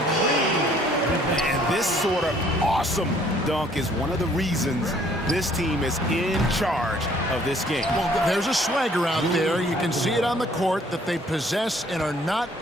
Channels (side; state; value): both; normal; correlation 0.60